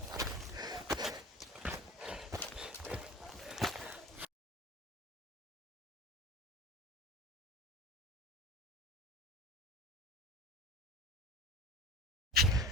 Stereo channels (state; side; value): normal; both; correlation 0.36